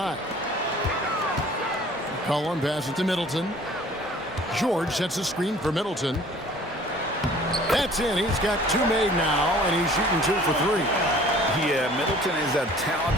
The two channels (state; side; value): normal; both; correlation 0.50